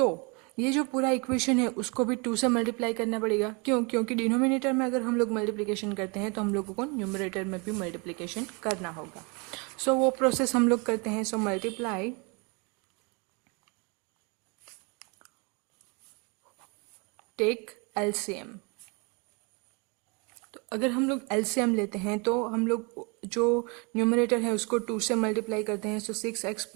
ये जो पूरा इक्वेशन है उसको भी 2 से मल्टीप्लाई करना पड़ेगा। क्योंकि डिनोमिनेटर में अगर हम लोग मल्टीप्लिकेशन करते हैं तो हम लोगों को न्यूमरेटर में भी मल्टीप्लिकेशन करना होगा। सो वो प्रोसेस हम लोग करते हैं। So multiply take LCM. तो अगर हम लोग एलसीएम लेते हैं तो हम लोग जो न्यूमरेटर है उसको 2 से मल्टीप्लाई करते हैं। सो 6x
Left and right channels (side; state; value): left; quieter; 31.2 dB